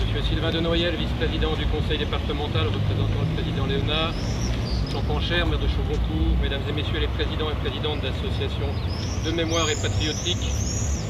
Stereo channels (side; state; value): both; identical; correlation 1.00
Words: M. Sylvain de Noyel, vice-président du conseil départemental, représentant le président Léonard. Jean Pancher, maire de Chaugoncourt, mesdames et messieurs les présidents et présidentes d'associations de mémoire et patriotique,